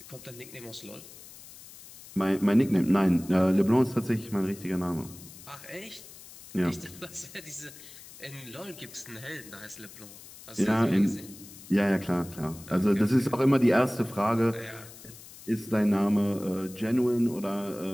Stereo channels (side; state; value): left; noise; hiss, 18 dB below the sound